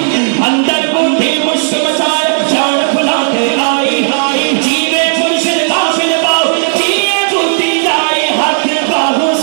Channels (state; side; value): silent; left; digital silence